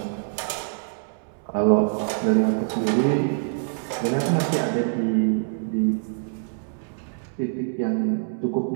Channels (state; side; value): silent; left; 62 dB below the other